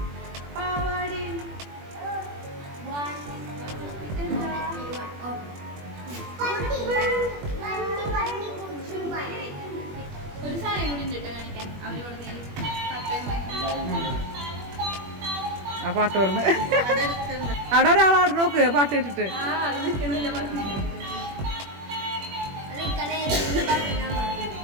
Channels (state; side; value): late; left; 21 ms